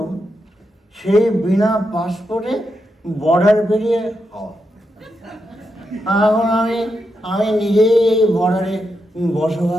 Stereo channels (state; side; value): normal; both; correlation 0.85